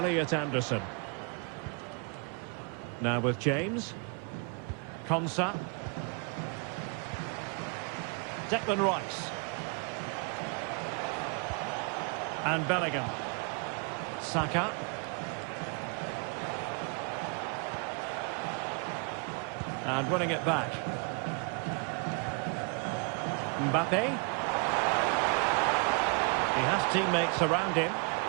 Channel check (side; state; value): left; quieter; 36.5 dB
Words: Anderson. Now with James. Konsa. Declan Rice. And Bellingham. Saka. And winning it back. Mbappe. He has teammates around him.